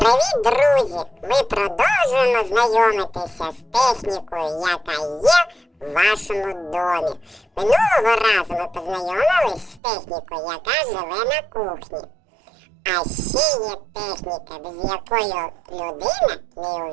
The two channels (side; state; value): left; drops out; at 9.8 s